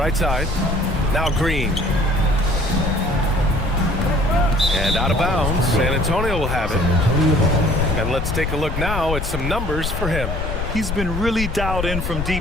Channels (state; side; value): noise; left; rumble, 4 dB below the sound